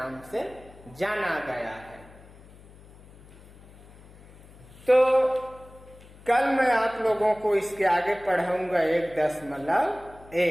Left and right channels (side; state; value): left; noise; hum, 22 dB below the sound